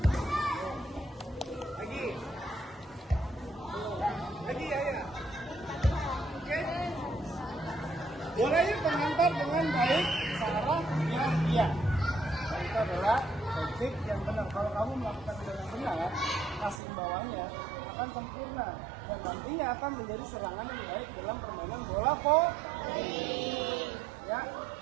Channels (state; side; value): drops out; left; at 16.8 s